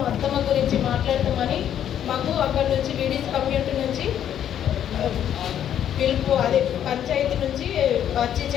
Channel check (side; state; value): right; quieter; 10.0 dB